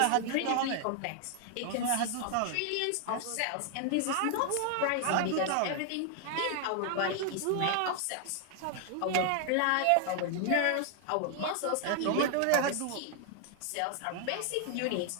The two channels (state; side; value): different; both; correlation 0.00